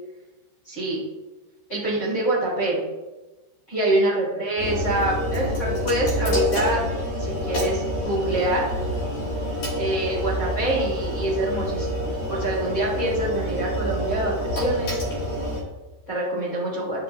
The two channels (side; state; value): right; late; 13 ms